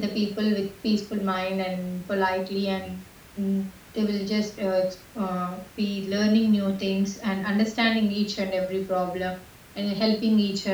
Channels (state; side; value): identical; both; correlation 1.00